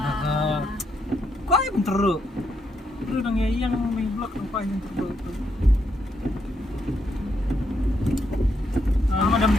Kau yang teruk nang yang main blok apa yang teruk itu. Madam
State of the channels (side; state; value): both; normal; correlation 0.78